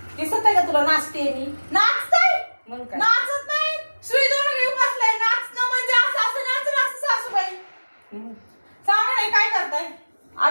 दिसत आहे का तुला नाचते मी? नाचताय? मग काय? नाचत नाही, सुई दोन घेऊन बसलाय. नाचणं म्हणजे असं नाचणं असं सासूबाई. सांगा नाही काय करताय?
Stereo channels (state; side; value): inverted; both; correlation -1.00